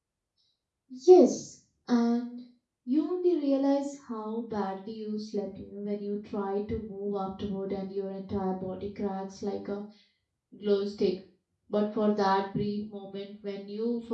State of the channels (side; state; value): both; identical; correlation 1.00